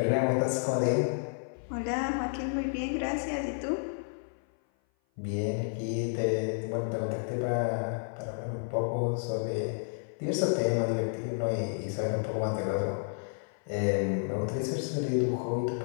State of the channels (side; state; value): right; silent; 55 dB below the other